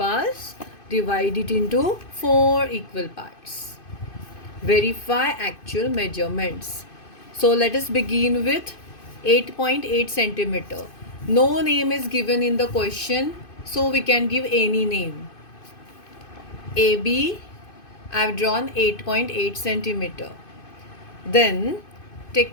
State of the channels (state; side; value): late; right; 2.5 ms